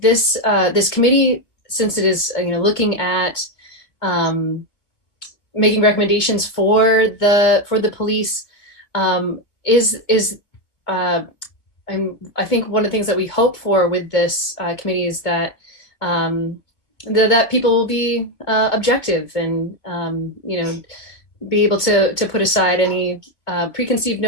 committee, since it is looking at making recommendations for the police, I think one of the things that we hope for with this committee is that that people will be objective and be able to put aside any preconceived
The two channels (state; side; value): late; right; 2.2 ms